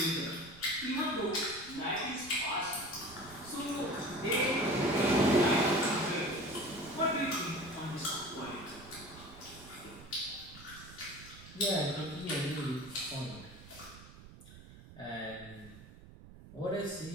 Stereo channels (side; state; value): right; noise; rumble, 18 dB below the sound